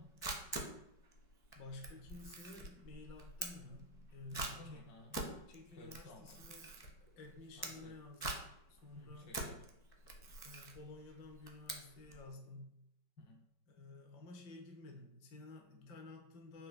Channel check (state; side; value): late; right; 5.2 ms